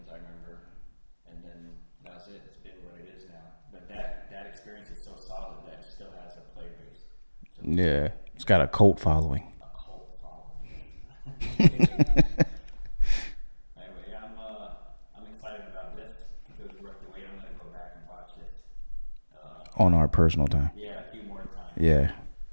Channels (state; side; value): inverted; both; correlation -1.00